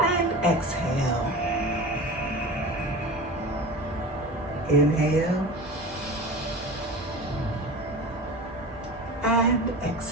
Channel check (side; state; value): both; normal; correlation 0.33